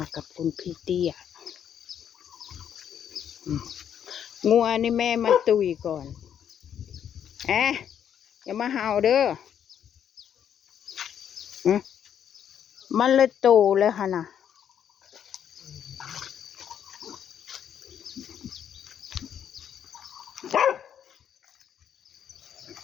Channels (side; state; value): right; quieter; 9.0 dB